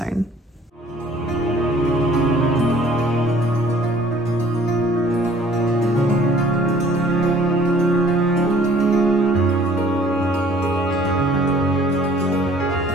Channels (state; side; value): normal; both; correlation 0.54